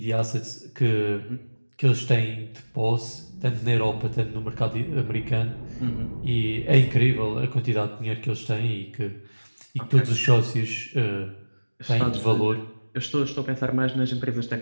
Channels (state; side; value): inverted; both; correlation -1.00